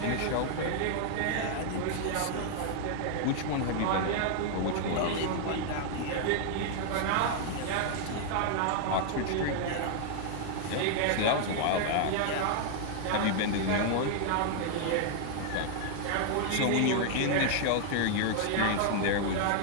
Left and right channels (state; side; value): different; both; correlation 0.00